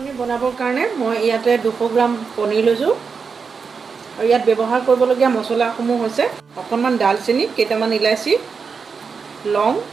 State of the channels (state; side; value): quieter; left; 5.5 dB